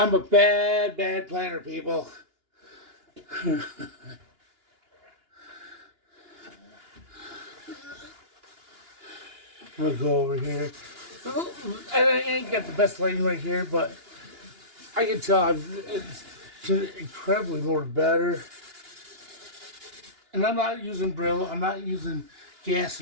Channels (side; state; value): left; late; 2.9 ms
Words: a bad planner, people. I'm gonna go over here. I ain't got the best lighting right here, but I can tell it's incredibly more better. And I'm not using Brillo. I'm not using